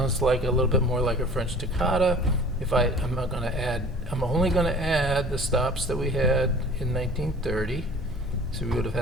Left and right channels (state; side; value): normal; both; correlation 0.45